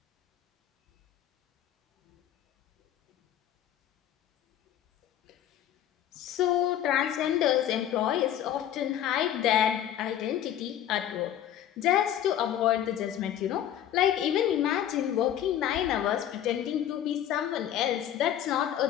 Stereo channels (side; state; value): right; quieter; 10.9 dB